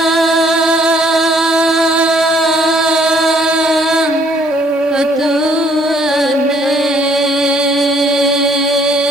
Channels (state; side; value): normal; both; correlation 0.63